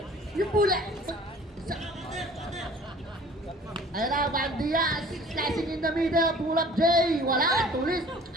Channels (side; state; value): both; normal; correlation 0.48